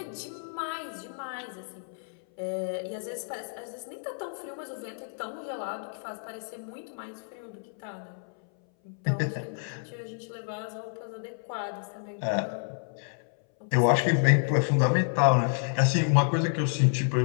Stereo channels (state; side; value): silent; right; 58 dB below the other